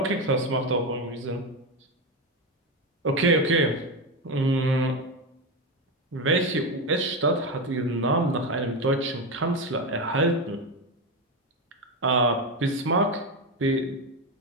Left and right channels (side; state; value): both; normal; correlation 0.14